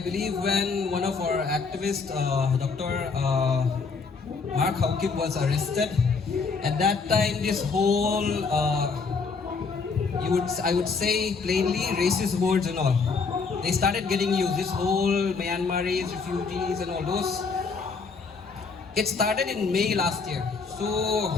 when one of our activists, Dr. Mark Haukip, was arrested, at that time this whole, I would say plainly, racist words and all, they started getting used. This whole Myanmaris, refugees and all those. It started in May last year. So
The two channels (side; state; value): right; quieter; 4.8 dB